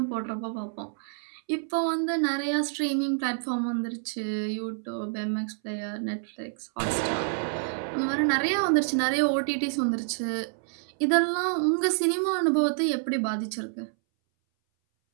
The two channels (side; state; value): left; silent; 59 dB below the other